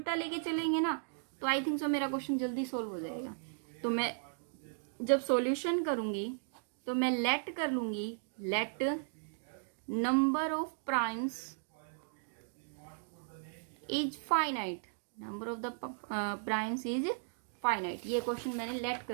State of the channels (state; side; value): silent; left; digital silence